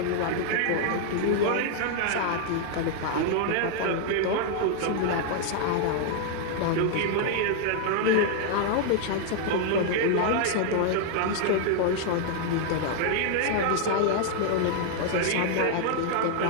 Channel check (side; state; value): both; different; correlation 0.00